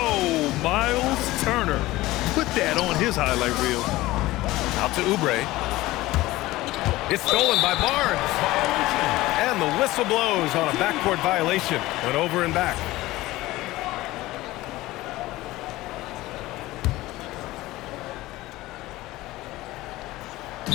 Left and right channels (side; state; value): right; quieter; 18.1 dB